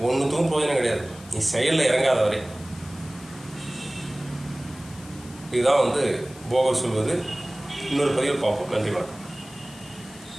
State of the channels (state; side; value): noise; left; hiss, 20 dB below the sound